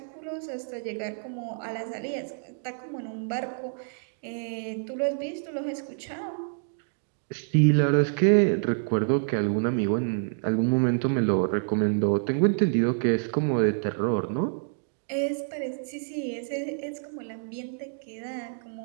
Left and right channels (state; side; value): silent; left; digital silence